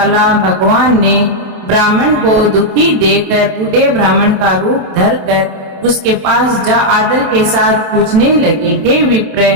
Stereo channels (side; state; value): left; late; 27 ms